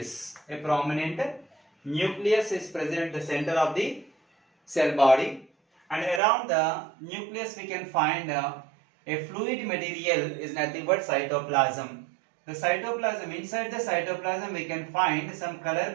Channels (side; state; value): left; drops out; at 6.2 s